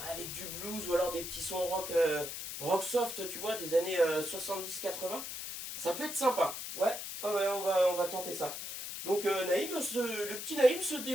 ou alors des petits sons rock soft tu vois des années 70-80. Ça peut être sympa. Ouais, ouais on va tenter ça. Donc Naïm, le petit Naïm se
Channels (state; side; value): noise; left; hiss, 7 dB below the sound